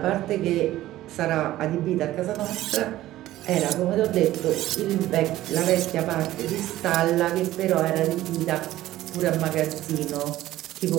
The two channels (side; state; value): left; quieter; 15.0 dB